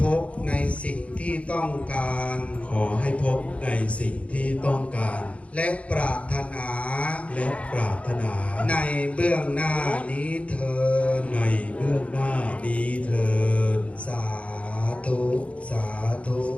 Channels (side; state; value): right; late; 0.063 ms